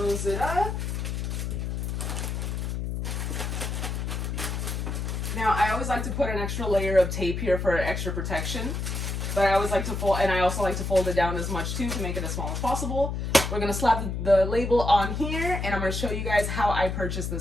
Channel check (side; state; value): left; noise; hum, 3 dB below the sound